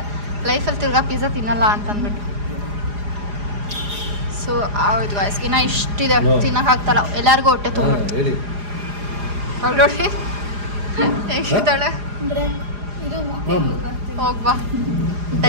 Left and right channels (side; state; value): left; late; 4.9 ms